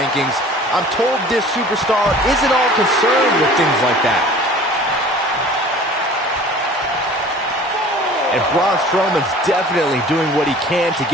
I'm told this superstar isn't all concerned with things like that. And Braun Strowman's definitely doing what he can to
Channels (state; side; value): normal; both; correlation 0.45